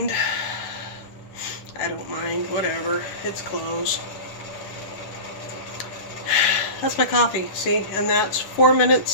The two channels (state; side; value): late; right; 10 ms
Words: I don't mind. Whatever. It's clothes. That's my coffee, see? And that's 4